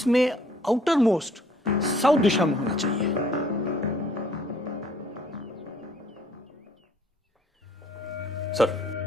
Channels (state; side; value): normal; both; correlation 0.60